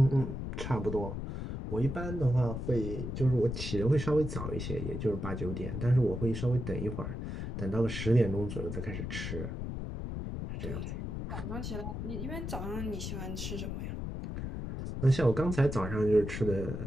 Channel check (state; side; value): noise; left; rumble, 5 dB below the sound